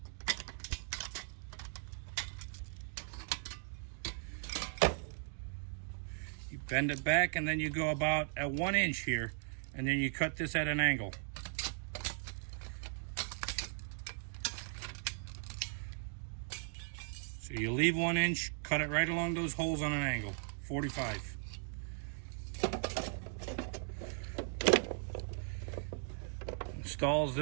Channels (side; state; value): left; silent; digital silence